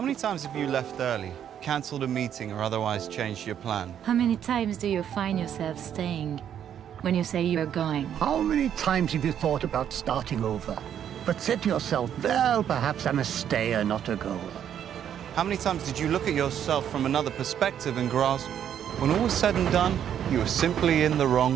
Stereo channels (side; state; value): left; quieter; 9.5 dB